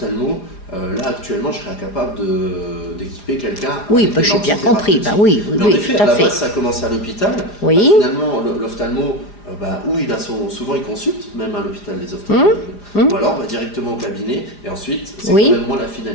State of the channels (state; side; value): late; right; 4.9 ms